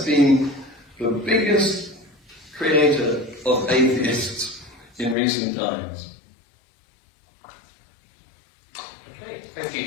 been the biggest creator of atheists in recent times. Okay, thank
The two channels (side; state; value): right; drops out; at 5.2 s